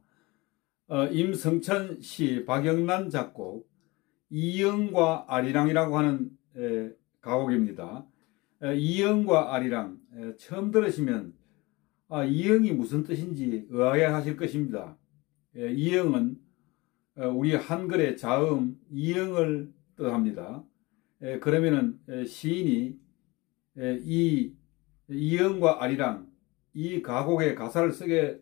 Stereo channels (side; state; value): right; quieter; 23.2 dB